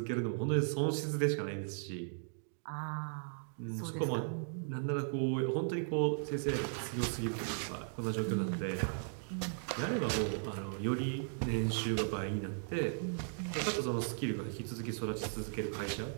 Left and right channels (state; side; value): silent; left; digital silence